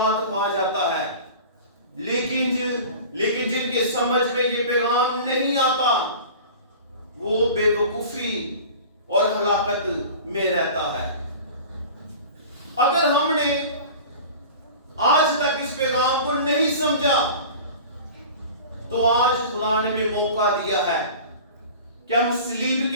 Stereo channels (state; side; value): inverted; both; correlation -0.38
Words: पा जाता है। लेकिन जिनके समझ में ये पैगाम नहीं आता, वो बेवकूफी और हलाकत में रहता है। अगर हमने आज तक इस पैगाम को नहीं समझा, तो आज खुदा ने भी मौका दिया है कि हम सलीब